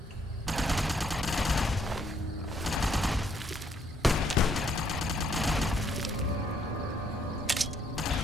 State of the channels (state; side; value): normal; both; correlation 0.70